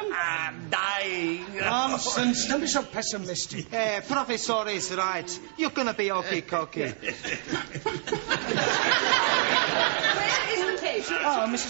I'm dying. Nonsense. Don't be so pessimistic. Professor is right. You're gonna be okay-cokey. Where is the patient? Ah,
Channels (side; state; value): left; silent; 59 dB below the other